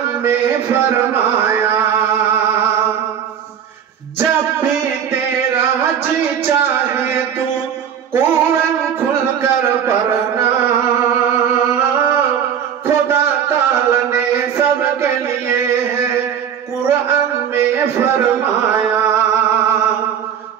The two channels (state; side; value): quieter; left; 8.6 dB